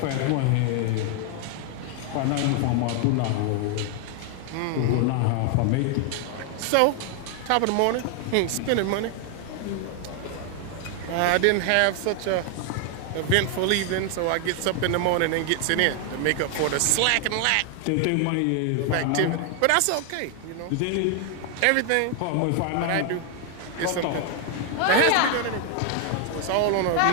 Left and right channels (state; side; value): different; both; correlation 0.00